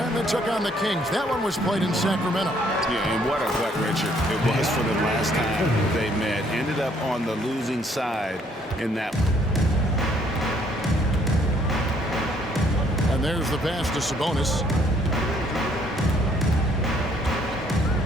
they took on the Kings. That one was played in Sacramento. Yeah, and what a gut wrencher it was for them last time they met. Ended up on the losing side in that one. And there's the pass to Sabonis.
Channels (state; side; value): normal; both; correlation 0.65